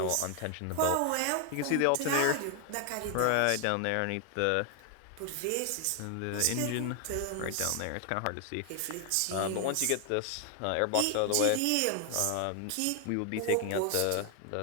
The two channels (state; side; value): different; both; correlation 0.00